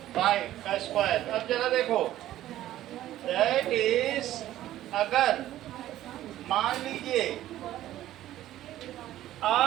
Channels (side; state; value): left; quieter; 13.7 dB